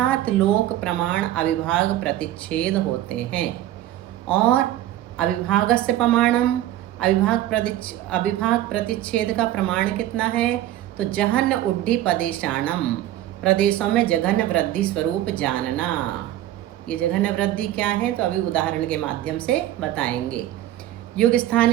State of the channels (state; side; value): quieter; left; 13.5 dB